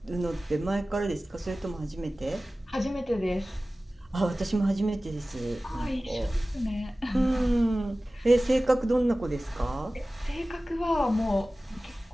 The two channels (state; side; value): normal; both; correlation 0.97